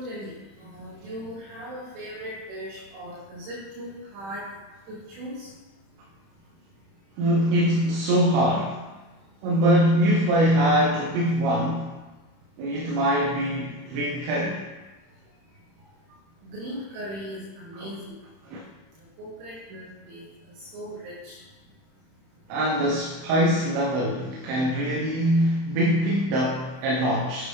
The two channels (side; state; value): left; late; 31 ms